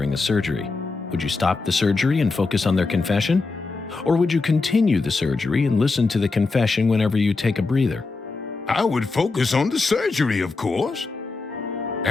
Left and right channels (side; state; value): right; quieter; 3.9 dB